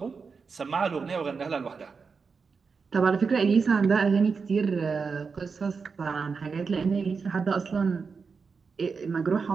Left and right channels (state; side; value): quieter; left; 5.2 dB